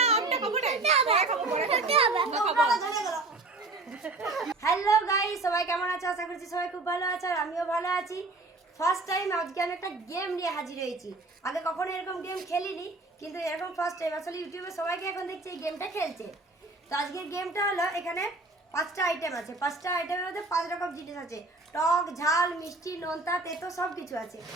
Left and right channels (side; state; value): left; quieter; 3.2 dB